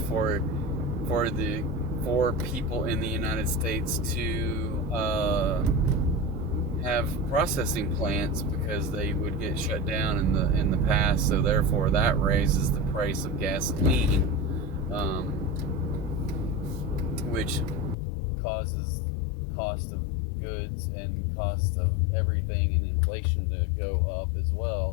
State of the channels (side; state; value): right; drops out; at 17.9 s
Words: for people in the United States to have processing plants, because they would get shut down in the past, so therefore that raises the price of gasoline, which causes cost of goods and cost of everything and inflation to go up as